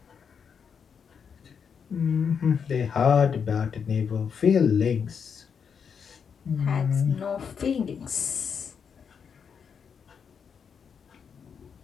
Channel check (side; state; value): right; quieter; 6.7 dB